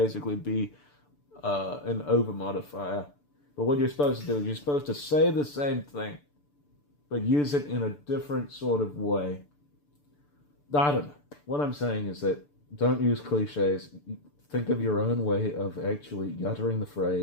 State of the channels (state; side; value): late; right; 6.9 ms